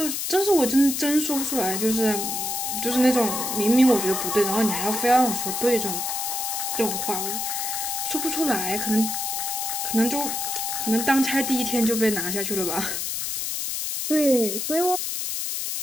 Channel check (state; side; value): noise; left; hiss, 2 dB below the sound